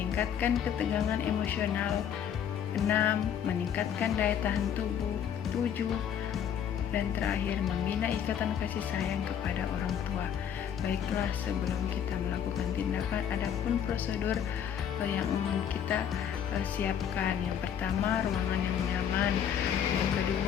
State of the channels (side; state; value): right; quieter; 8.8 dB